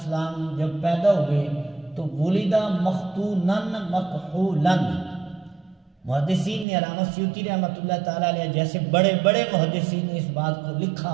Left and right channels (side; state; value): left; drops out; at 6.7 s